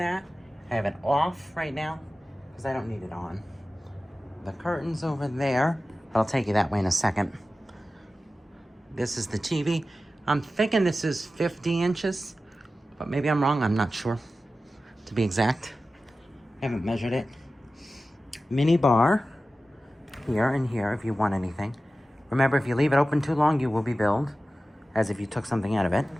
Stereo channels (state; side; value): normal; both; correlation 0.95